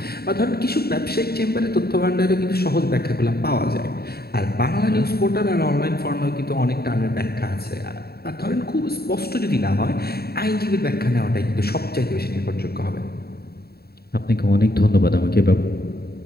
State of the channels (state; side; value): late; right; 0.46 ms